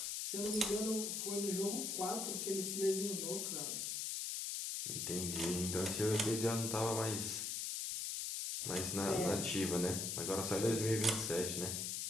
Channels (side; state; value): left; noise; hiss, 2 dB below the sound